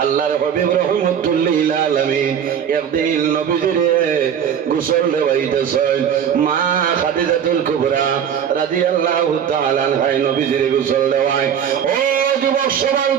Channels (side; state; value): left; quieter; 8.5 dB